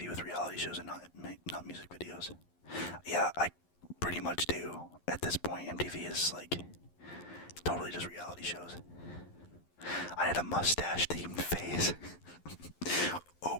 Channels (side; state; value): right; late; 11 ms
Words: with reality shows and not music videos. Yeah, I pretty much do. At this point, MTV is totally just reality shows. I had a mustache-themed phase. Oh